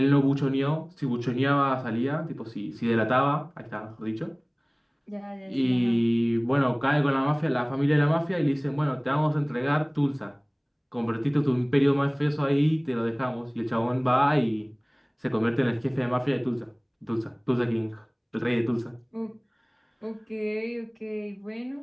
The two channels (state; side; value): identical; both; correlation 1.00